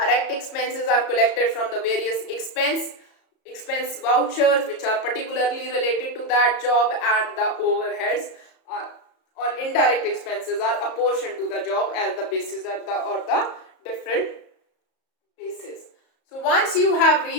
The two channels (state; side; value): late; right; 34 ms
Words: expenses are collected from the various expense vouchers which are particularly related to that job, and the overheads or indirect expenses are apportioned to the job as the basis or the different basis. So once you have